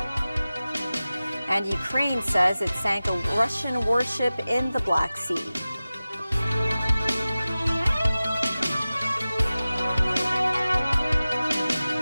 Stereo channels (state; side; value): inverted; both; correlation -0.96